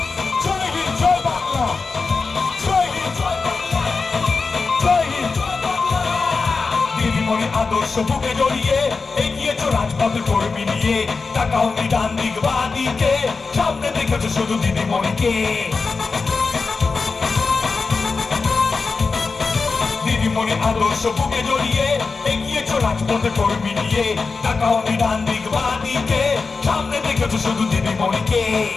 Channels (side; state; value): right; quieter; 4.4 dB